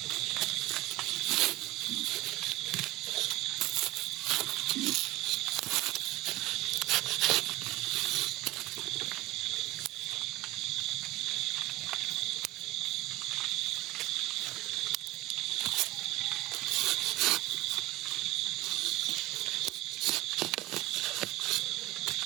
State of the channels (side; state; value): left; quieter; 18.7 dB